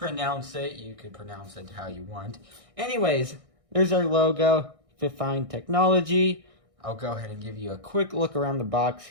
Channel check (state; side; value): late; left; 1.6 ms